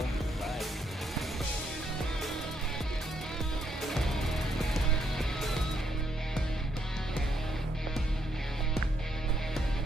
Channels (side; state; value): both; normal; correlation 0.75